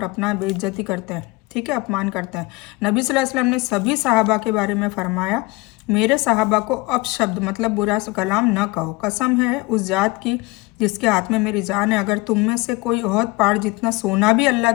अपना बेइज्जती करते हैं, ठीक है, अपमान करते हैं। नबी सल्लल्लाहु अलैहि वसल्लम ने सभी सहाबा के बारे में फरमाया, मेरे सहाबा को अपशब्द मतलब बुरा कलाम न कहो। कसम है उस जात की जिसके हाथ में मेरी जान है, अगर तुम में से कोई ओहद पहाड़ जितना सोना भी अल्लाह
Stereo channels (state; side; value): quieter; right; 23.1 dB